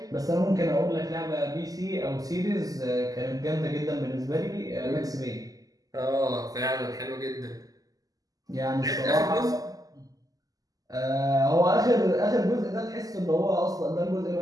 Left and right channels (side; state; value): left; late; 0.17 ms